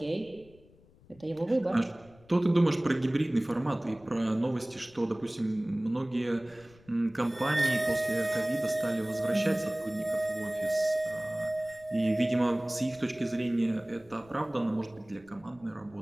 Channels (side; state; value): left; noise; rumble, 26 dB below the sound